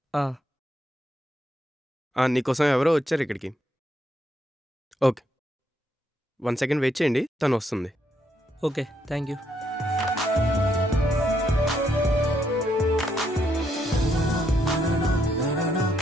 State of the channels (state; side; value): normal; both; correlation 0.76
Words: నీకోసం ఎవరో వచ్చారు ఇక్కడికి. ఓకే 1 సెకండ్ వెయిట్ చేయండి, తను వస్తుంది. Okay thank you.